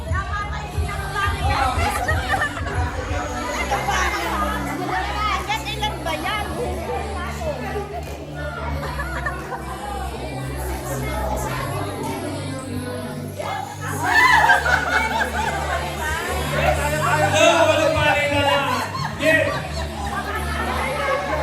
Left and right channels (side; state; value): both; identical; correlation 1.00